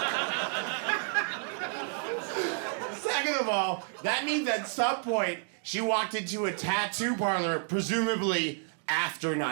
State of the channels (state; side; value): silent; left; 56 dB below the other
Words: Second of all, that means at some point she walked into a tattoo parlor, presumably after